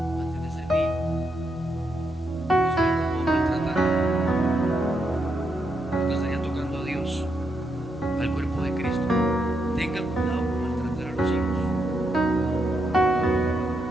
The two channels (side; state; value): both; normal; correlation 0.81